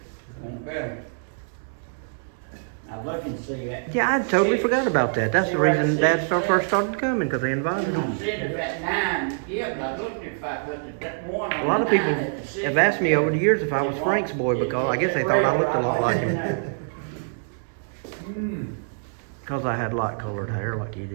Won't better. I'm looking to see that. Yeah, I totally forgot about that. That's the reason Dad first started coming, because they invited him. I'm sitting at 9, yeah, but I looked if I put that one on A lot of the people 9 at the 6. have asked me over the years if I was Frank's boy, because I guess they thought I looked a lot like him. Hmm. Because I had light colored hair like he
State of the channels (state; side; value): silent; left; 62 dB below the other